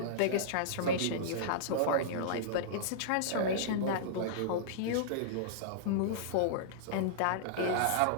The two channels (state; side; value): different; both; correlation -0.02